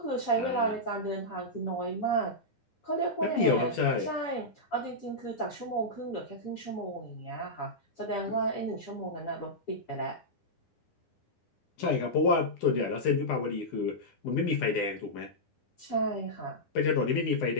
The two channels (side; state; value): right; late; 9.8 ms